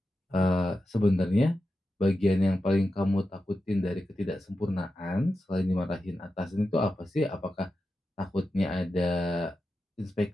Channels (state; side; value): normal; both; correlation 0.90